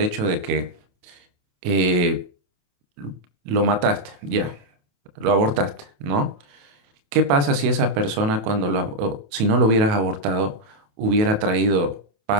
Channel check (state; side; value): late; left; 27 ms